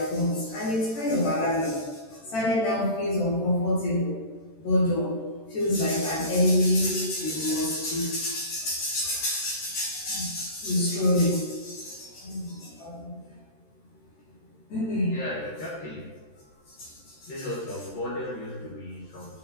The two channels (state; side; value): late; right; 13 ms